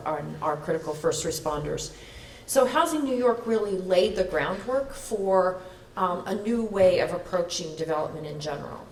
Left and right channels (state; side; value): identical; both; correlation 1.00